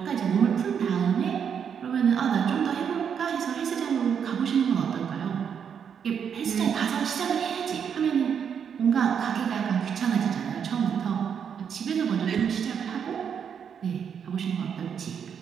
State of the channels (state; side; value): quieter; left; 7.6 dB